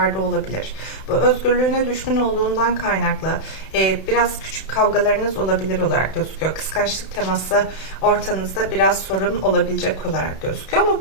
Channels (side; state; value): right; late; 31 ms